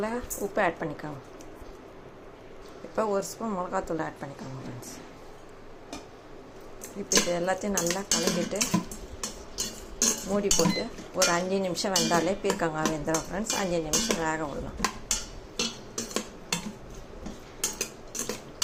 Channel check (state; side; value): identical; both; correlation 1.00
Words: உப்பு ஆட் பண்ணிக்கோங்க. இப்போ ஒரு ஸ்பூன் மிளகாத்தூள் ஆட் பண்ணிக்கோங்க ஃப்ரெண்ட்ஸ். இப்போ இது எல்லாத்தையும் நல்லா கலக்கிட்டு மூடி போட்டு ஒரு 5 நிமிஷம் வெந்தாலே பீர்க்கங்காய் வெந்துடும் ஃப்ரெண்ட்ஸ். 5 நிமிஷம் வேக விடலாம்.